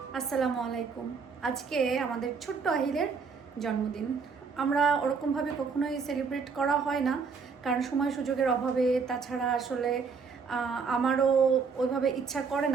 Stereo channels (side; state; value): left; quieter; 5.3 dB